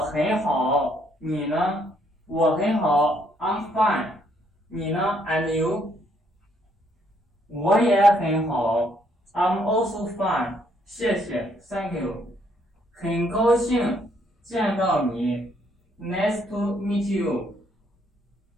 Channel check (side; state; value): both; normal; correlation 0.70